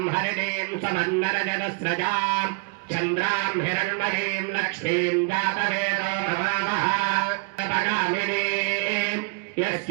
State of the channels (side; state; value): left; quieter; 31.0 dB